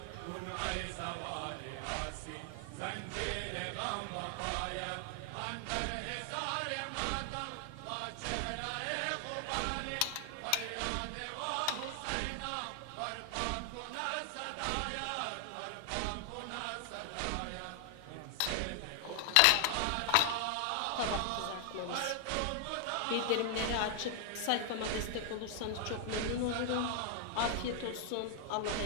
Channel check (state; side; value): different; both; correlation 0.00